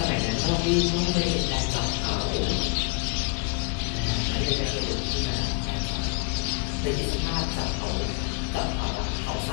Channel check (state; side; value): quieter; right; 31.7 dB